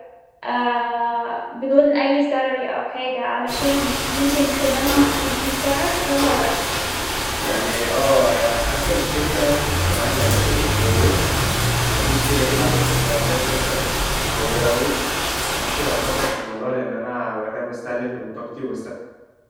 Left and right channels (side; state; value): both; identical; correlation 1.00